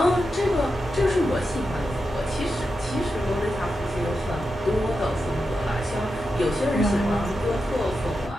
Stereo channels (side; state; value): both; normal; correlation 0.89